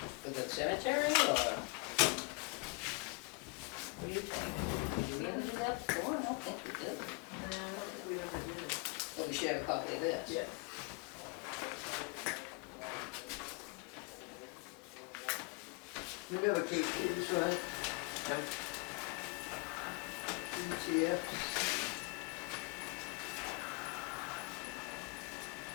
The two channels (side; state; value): right; quieter; 30.2 dB